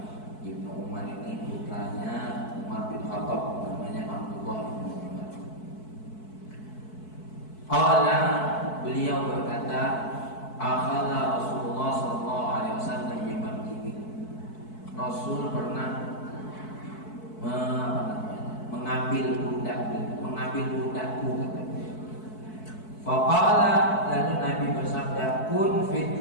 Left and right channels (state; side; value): late; right; 4.6 ms